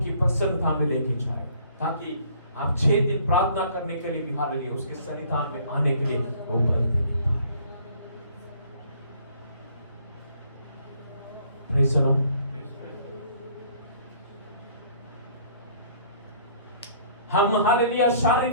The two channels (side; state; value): both; inverted; correlation -0.58